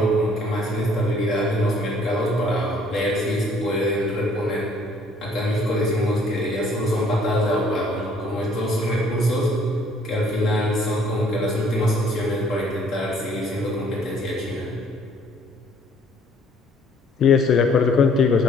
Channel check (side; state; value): both; normal; correlation 0.60